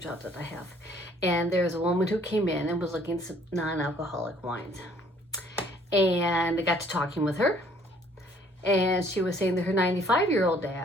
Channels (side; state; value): both; normal; correlation 0.60